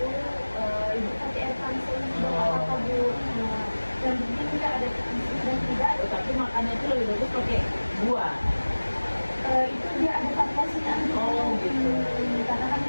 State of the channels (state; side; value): inverted; both; correlation -1.00